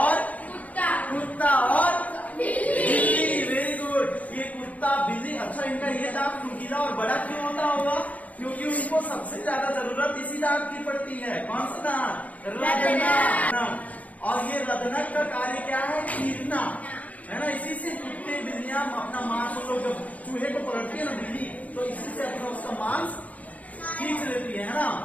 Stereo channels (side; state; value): right; late; 0.071 ms